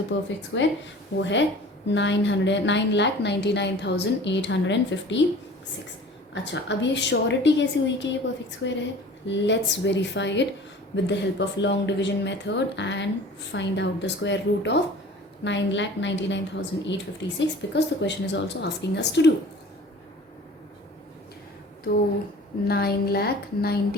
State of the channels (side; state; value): both; normal; correlation 0.44